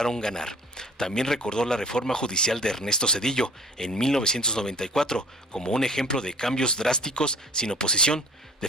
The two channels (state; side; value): normal; both; correlation 0.48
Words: ganar. También recordó la reforma judicial de Ernesto Zedillo en 1994 como un ejemplo de cambios drásticos sin oposición.